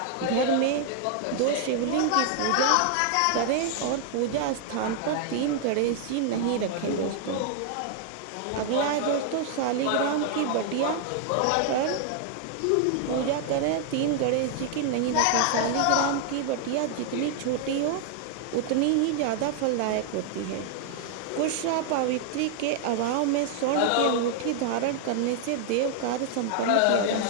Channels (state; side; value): different; both; correlation 0.00